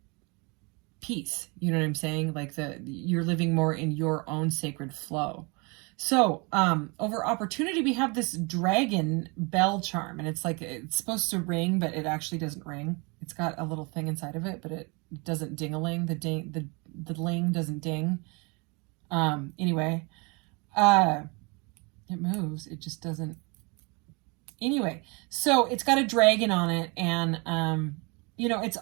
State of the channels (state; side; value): quieter; left; 29.8 dB